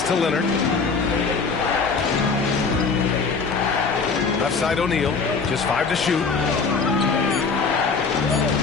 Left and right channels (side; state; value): right; quieter; 4.8 dB